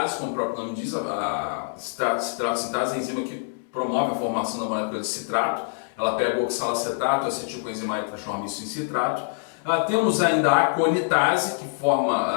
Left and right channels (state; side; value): silent; right; digital silence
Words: como o próprio nome diz, a citrato-sintase é a enzima que promove a formação da molécula de citrato. Ela pega o oxalacetato, a acetilcoenzima A e transforma isso em citrato. Temos ainda a aconitase, que forma